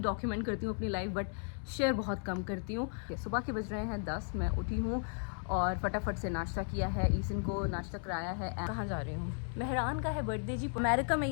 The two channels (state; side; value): silent; right; 54 dB below the other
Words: करती हूँ अपनी लाइफ, बट शेयर बहुत कम करती हूँ। सुबह के बज रहे हैं 10, मैं उठी हूँ और फटाफट से नाश्ता किया है, ईसन को नाश्ता कराया है। कहाँ जा रही हूँ? मेहरान का है बर्थडे जी, अमेरिका में